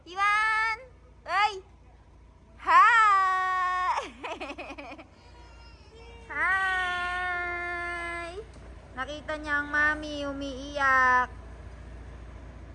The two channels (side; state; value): both; identical; correlation 1.00